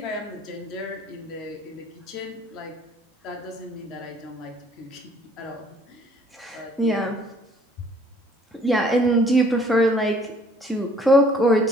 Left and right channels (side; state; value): both; normal; correlation 0.59